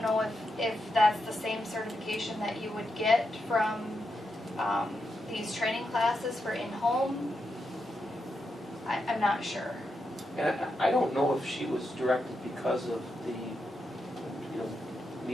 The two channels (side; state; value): both; normal; correlation 0.85